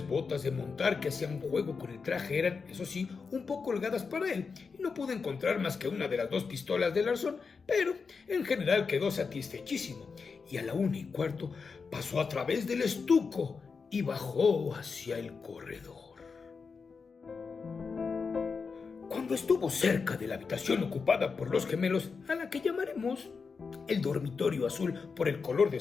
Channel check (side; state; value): right; quieter; 5.1 dB